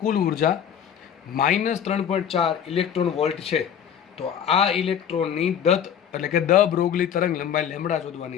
કુલ ઉર્જા -3.4 ઇલેક્ટ્રોન વોલ્ટ છે. તો આ ઇલેક્ટ્રોનની દત્ત એટલે કે દ બ્રોગલી તરંગ લંબાઈ લેમ્બડા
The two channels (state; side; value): quieter; right; 8.7 dB